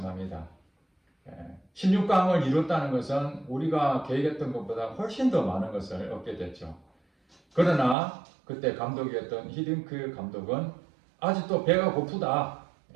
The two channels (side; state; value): left; drops out; at 8.0 s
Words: 16강을 이뤘다는 것은 우리가 계획했던 것보다 훨씬 더 많은 것을 얻게 됐죠. 그러나 그때 감독이었던 히딩크 감독은 아직도 배가 고프다,